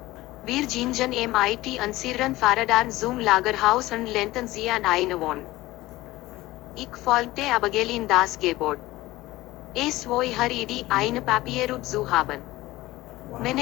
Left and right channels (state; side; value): quieter; right; 18.1 dB